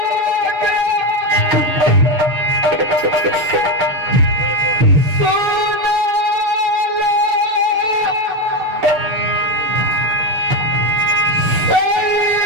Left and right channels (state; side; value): late; left; 6.7 ms